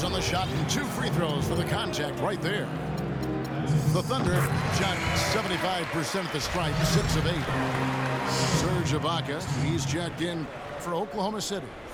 on the shot and 2 free throws for the contact right there. The Thunder shot 75% at the stripe, 6 of 8. Serge Ibaka, he's checked in for Oklahoma City.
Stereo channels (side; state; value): both; identical; correlation 1.00